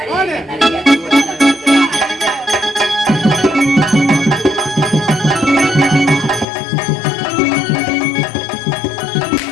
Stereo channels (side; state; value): right; drops out; at 6.5 s